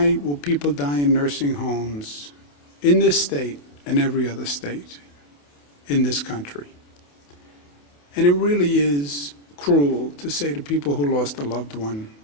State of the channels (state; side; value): late; right; 28 ms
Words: will people die in nursing homes in this state and every other state in this country? And it really is cruel to say to people who lost a loved one,